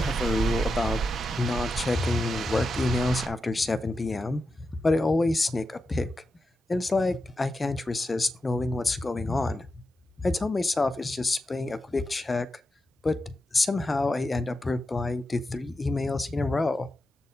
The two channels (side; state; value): both; normal; correlation 0.89